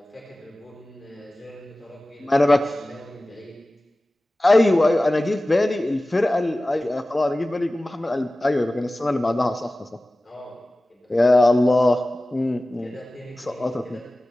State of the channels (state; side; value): normal; both; correlation 0.97